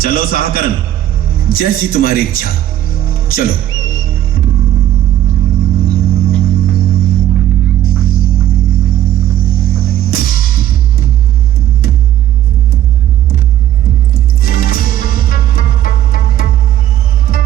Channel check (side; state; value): left; quieter; 12.3 dB